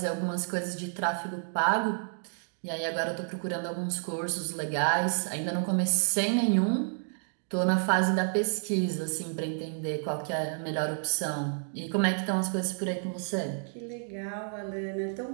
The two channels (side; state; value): left; silent; 58 dB below the other